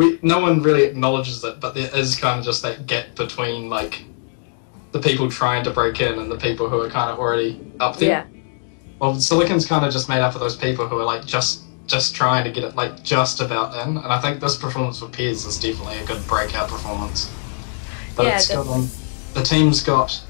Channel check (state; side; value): silent; right; digital silence